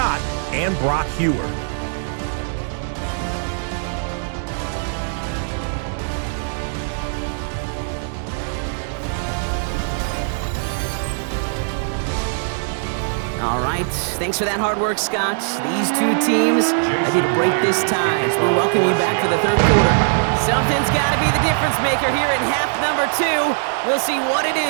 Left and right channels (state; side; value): silent; left; digital silence